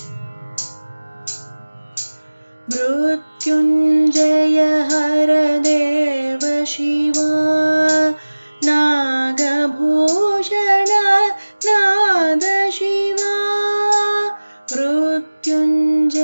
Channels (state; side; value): inverted; both; correlation -1.00